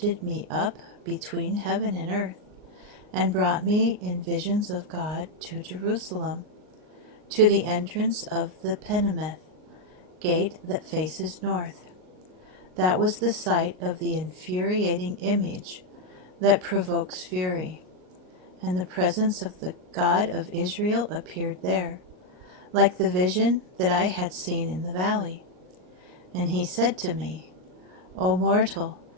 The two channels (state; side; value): late; left; 38 ms